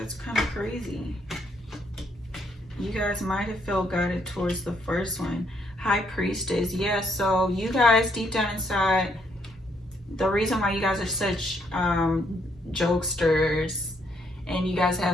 kind of crazy. You guys might have felt guided towards the first one. High Priestess. Yeah, so you guys deep down inside, the reason why you guys are such jokesters and you guys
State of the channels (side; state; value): both; normal; correlation 0.72